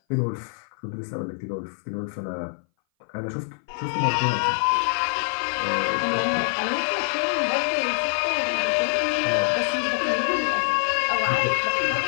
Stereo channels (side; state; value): right; silent; 59 dB below the other